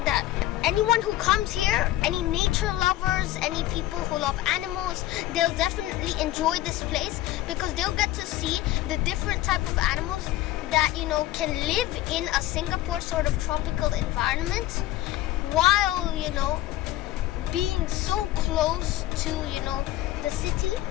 that anyone who comes here, any nature lovers, any people who love animals, they'll definitely enjoy this place because they'll get to see the different type of animals that, you know, can live in a Singapore sort of tropical environment while, you know, being so close to, you know, the city.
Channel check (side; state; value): right; quieter; 15.1 dB